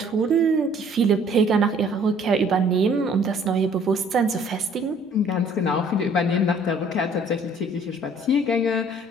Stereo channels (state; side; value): normal; both; correlation 0.57